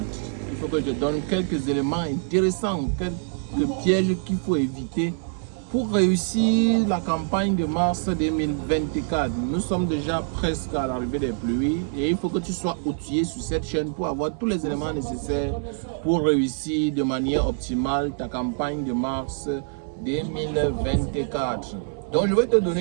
Il faut que je te donne quelques éléments intéressants, quelques pièges qu'il faut éviter pour réussir la campagne de mars 2024. Nous sommes déjà presque à l'arrivée des pluies et il faut que tu sois outillé sur cette chaîne pour avoir tous les éléments nécessaires pour réussir de manière optimale ta campagne de mars 2024. Donc je vais te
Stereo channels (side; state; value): left; silent; 62 dB below the other